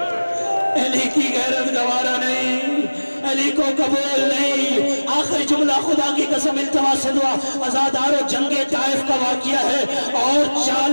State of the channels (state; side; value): inverted; both; correlation -1.00